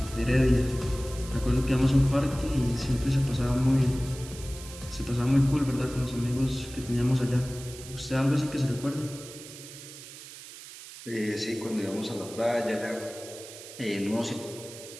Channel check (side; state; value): right; noise; hiss, 15 dB below the sound